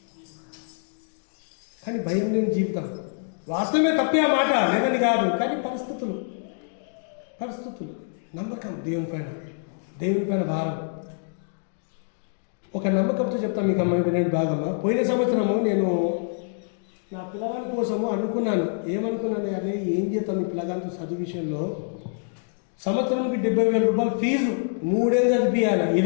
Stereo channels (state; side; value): silent; right; digital silence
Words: కానీ భయం లేని జీవితం వాస్తవమే, తప్పే ఆ మాట లేదని కాదు, కానీ పరిస్థితులు నమ్మకం దేవుని పైన భారం. ఒక నమ్మకంతో చెప్తాను మీకు అమ్మాయి వినండి బాగమ్మా. పోయిన సంవత్సరము నేను నా పిల్లగాని కోసము అనుకున్నాను. ఏమనుకున్నాను? అదే ఏం చేస్తాం ఈ పిల్లగానితో చదువు విషయంలో. సంవత్సరానికి 70,000 రూపాయలు ఫీజు, 3 ఏళ్ళు చదివియాలి.